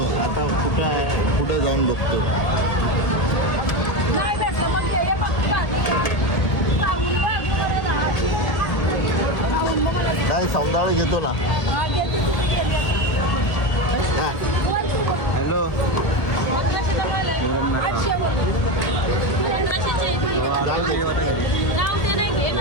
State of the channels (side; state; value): right; late; 1.8 ms